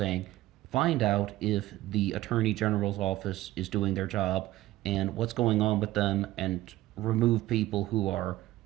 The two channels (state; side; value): quieter; left; 15.9 dB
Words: find out if the Attorney General's office is doing their job and what's going on with them, and remove people who are